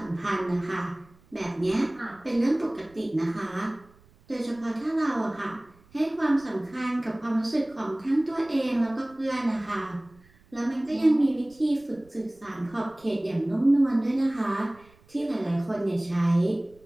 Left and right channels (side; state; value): right; noise; rumble, 29 dB below the sound